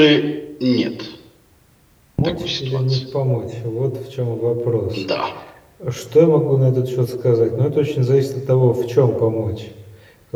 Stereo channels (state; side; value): identical; both; correlation 1.00